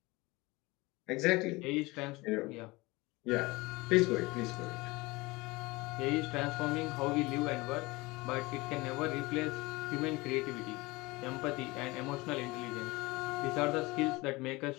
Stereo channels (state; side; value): quieter; right; 22.8 dB